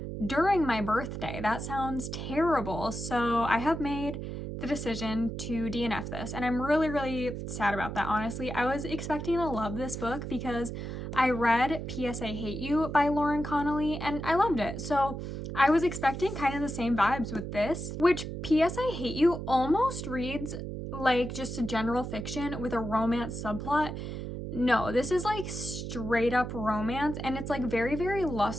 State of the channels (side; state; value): right; noise; hum, 6 dB below the sound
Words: during my birthday. That sounds terrible. So I have made the decision to DNF this, and I'm really sad about that, honestly. I was expecting to love this book because I read P.S. I Hate You by Lauren Connolly and I loved it. So I was expecting kind of the same vibes with this, which P.S. I Hate You almost reads like just a general fiction with a romance subplot. No, this is like straight up romance, and it's like very